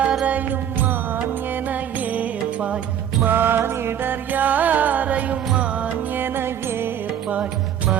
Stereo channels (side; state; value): left; quieter; 9.6 dB